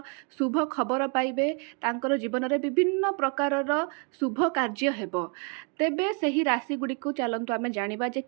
शुभ खबर पाइबे, तांकर जीवन में विभिन्न प्रकारर शुभ कार्य हेबो। तेबे सही राशि गुडी को चलंतु आमे जानिबा जे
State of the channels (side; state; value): left; quieter; 35.9 dB